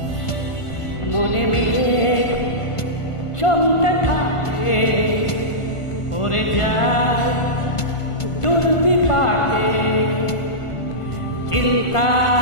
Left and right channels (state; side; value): late; right; 1.5 ms